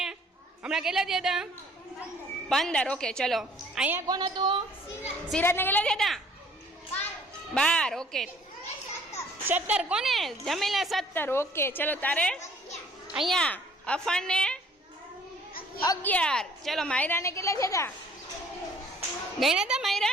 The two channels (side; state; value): both; normal; correlation 0.57